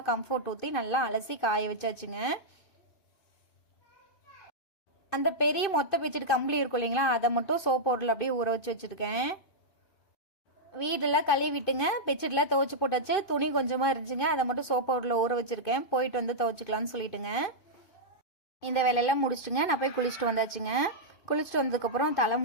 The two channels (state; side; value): late; right; 2.5 ms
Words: கம்ஃபர்ட் ஊற்றி நல்லா அலசி காய வச்சாச்சுங்க. அந்த பெரிய மொத்த பெட்ஷீட் கம்பளி இருக்கும் இல்லைங்களா, அதை மட்டும் சோப் பவுடரில் அப்படியே ஊற வச்சு வச்சுருக்கேன். வீடெல்லாம் கழுவி விட்டுங்க பெட்ஷீட்லாம் துவைச்சி போட்டாச்சு. துணி கொஞ்சமாக இருந்துச்சுங்க, அதை மட்டும் சோப் பவுடரில் ஊற வச்சுருக்கேன். போயிட்டு வந்து துவைச்சிக்கலான்னு சொல்லிட்டுங்க இந்த வேலையெல்லாம் முடிச்சுட்டுங்க நான் போய் குளிச்சுட்டு வந்தாச்சுங்க. குளிச்சுட்டு வந்ததுக்கப்புறம்